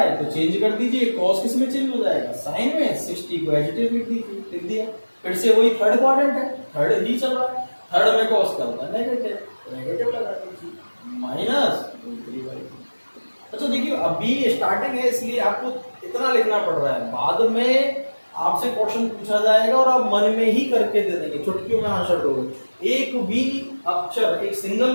तो चेंज कर दीजिए, cos किस में चेंज हो जाएगा, साइन में, 60 को एज इट इज लिख दीजिए, लिख दिया। फिर से वही थर्ड क्वाड्रेंट है, थर्ड ही चल रहा है, थर्ड में cos क्या होता है, नेगेटिव, तो नेगेटिव लगा दीजिए, माइनस। अच्छा देखिए अभी स्टार्टिंग है इसलिए आपको इतना लिखना पड़ रहा है, बाद में आपसे क्वेश्चन पूछा जाएगा और आप मन में ही करके दे देंगे, चुटकियों में आंसर दोगे। एक भी अक्षर, एक सिंगल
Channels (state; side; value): inverted; both; correlation -1.00